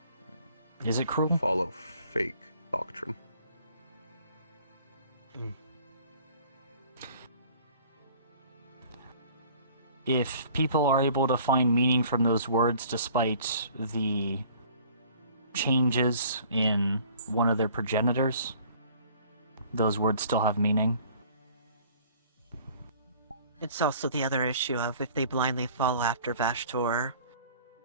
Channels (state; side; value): inverted; both; correlation -0.52